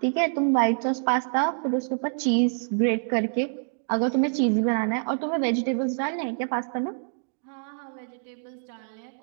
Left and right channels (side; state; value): left; silent; digital silence